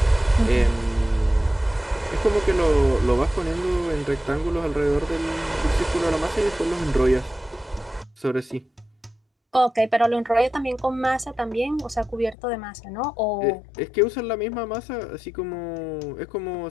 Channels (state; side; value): drops out; right; at 12.4 s